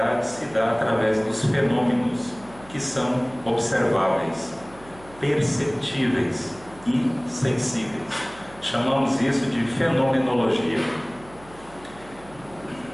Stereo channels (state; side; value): noise; right; hum, 22 dB below the sound